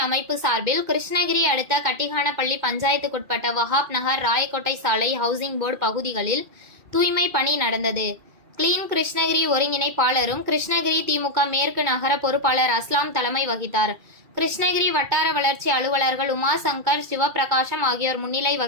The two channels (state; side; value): late; left; 2.4 ms